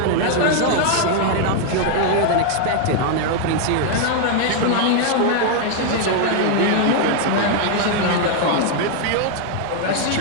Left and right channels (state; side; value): different; both; correlation 0.00